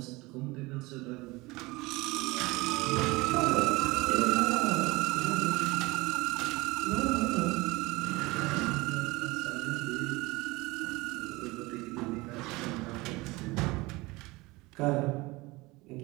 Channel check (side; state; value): left; quieter; 22.4 dB